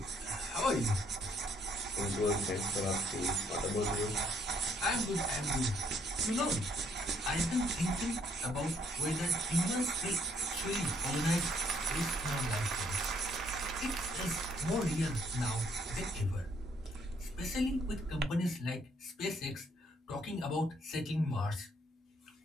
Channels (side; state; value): both; normal; correlation 0.67